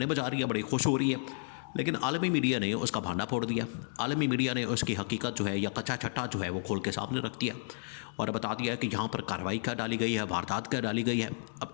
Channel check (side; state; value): right; silent; digital silence